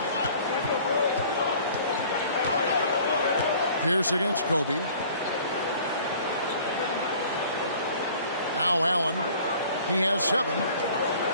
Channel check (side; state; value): both; inverted; correlation -0.50